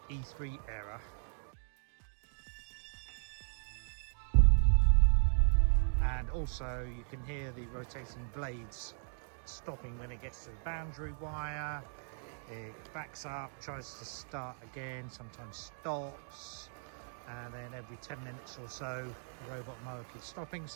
E3 error? And also you can hear the rotating blades stopping when it gets to the boundary wire. It backs up, tries to start again, sometimes stops, and then every 10 minutes or so the robot mower keeps stopping,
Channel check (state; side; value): silent; left; digital silence